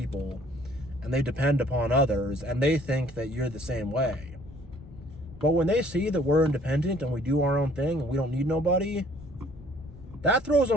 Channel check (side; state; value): left; noise; rumble, 20 dB below the sound